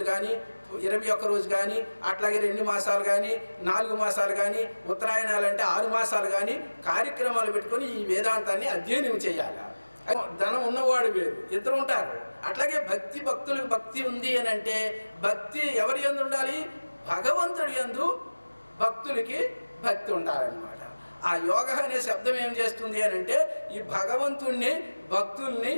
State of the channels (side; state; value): both; inverted; correlation -1.00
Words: కానీ, 21 రోజు కానీ, అట్లాగే 2 మాసాలు కానీ, 4 మాసాలు కానీ, ఉత్తరాయణాలు అంటే 6 మాసాలు కానీ కార్యక్రమాలు పెట్టుకొని ఈ వేదాంతాన్ని అధ్యయనం చేయాలి. ధనం ఉన్నవాడు వేరు, ఇద్దరు ఉంటారు. అట్లాగే భక్తులకు భక్తి ఉంది అని అంటే భక్తి ఎవరి యందు ఉండాలి? భగవంతుడి యందు భక్తులకి భక్తి ఉండాలన్నమాట. ఆ యోగ అనే శబ్దం ఏం చేస్తుంది అని అంటే ఈ భగవంతుణ్ణి భక్తుల్ని,